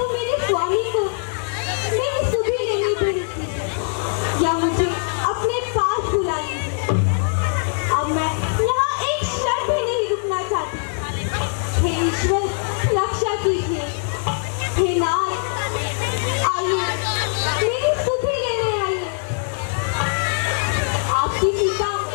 मेरे स्वामी को मेरी सुधि लेने प्रेरित कीजिए या मुझे अपने पास बुला लीजिए। अब मैं यहाँ एक क्षण भी नहीं रुकना चाहती। हे ईश्वर, रक्षा कीजिए। हे नाथ, आइए मेरी सुधि लेने आइए। आपकी सीता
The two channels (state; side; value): silent; right; 64 dB below the other